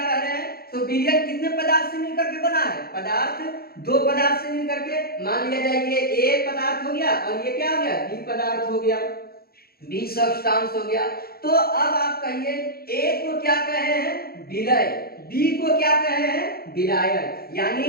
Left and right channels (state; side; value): late; right; 0.44 ms